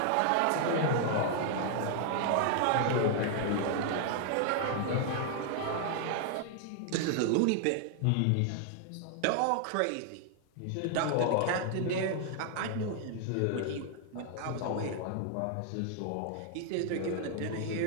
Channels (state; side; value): different; both; correlation 0.00